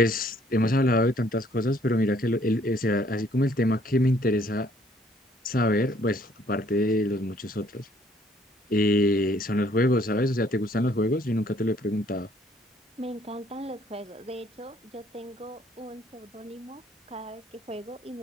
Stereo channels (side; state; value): both; normal; correlation 0.63